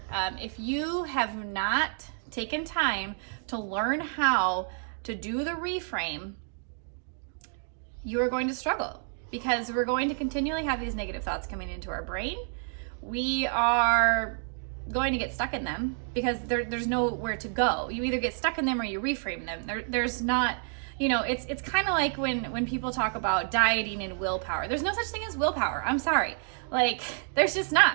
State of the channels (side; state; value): left; silent; 55 dB below the other